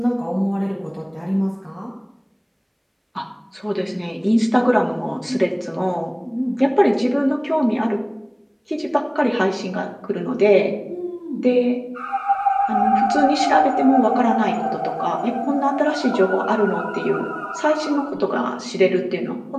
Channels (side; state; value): both; identical; correlation 1.00